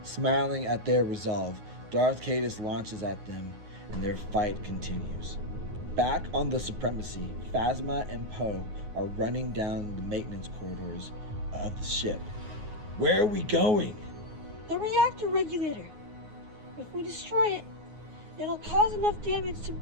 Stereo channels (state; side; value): late; left; 9.5 ms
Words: Smiling at their resolve, Darth Caedus launches at them, and their fight continues. Back on the Supremacy, Phasma and Poe are running down the maintenance corridors of the ship. Where are we going? The reactor regulator. If we destroy it, it'll cause enough damage to